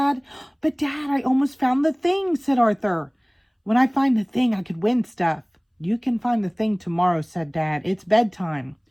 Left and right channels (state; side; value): identical; both; correlation 1.00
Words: But Dad, I almost found the thing, said Arthur. When I find the thing, I could win stuff. You can find the thing tomorrow, said Dad. It's bedtime.